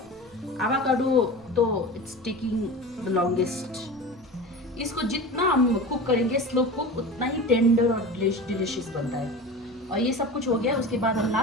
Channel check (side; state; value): both; normal; correlation 0.32